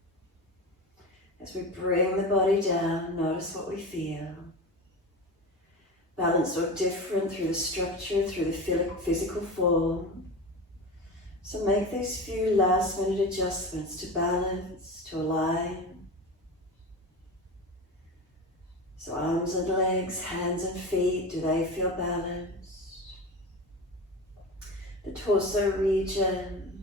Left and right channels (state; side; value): normal; both; correlation 0.28